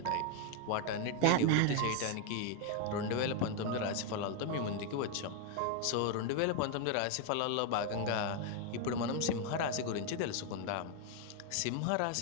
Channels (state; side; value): different; both; correlation 0.01